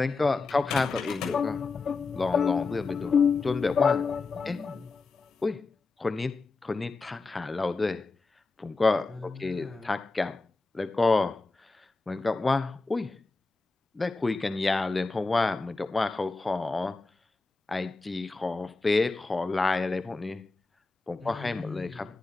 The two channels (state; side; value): quieter; right; 3.9 dB